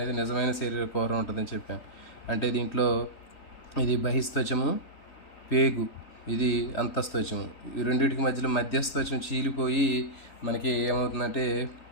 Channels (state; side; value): late; right; 3.3 ms